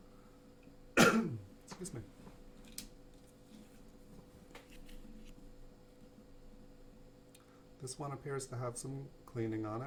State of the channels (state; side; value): identical; both; correlation 1.00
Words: Excuse me. This one appears to have some cleaning on